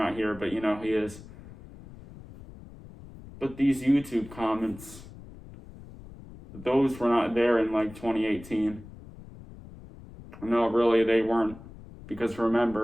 here, but he is. But these YouTube comments, those were not there in like 2018. No, really, they weren't. Because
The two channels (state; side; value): noise; left; rumble, 17 dB below the sound